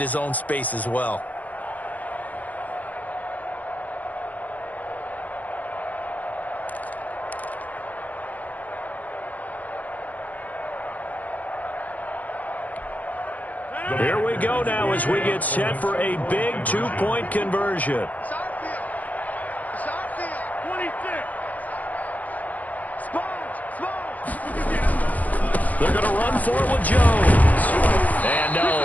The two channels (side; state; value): right; late; 0.078 ms